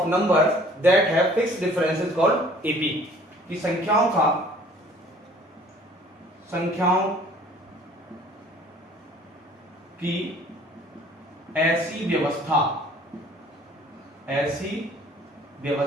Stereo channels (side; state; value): both; normal; correlation 0.54